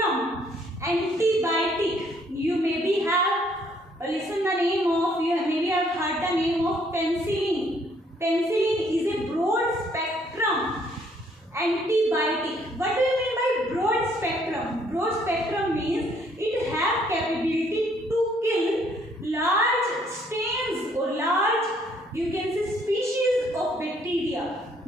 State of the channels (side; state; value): both; normal; correlation 0.66